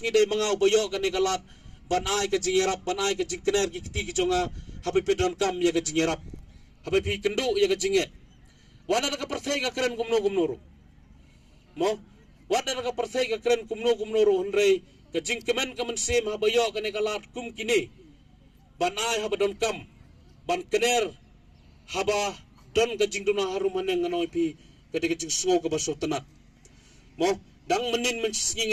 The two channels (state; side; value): identical; both; correlation 1.00